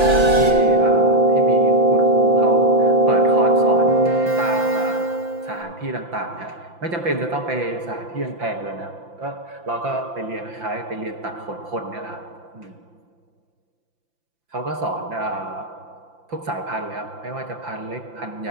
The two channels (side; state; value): left; late; 5.8 ms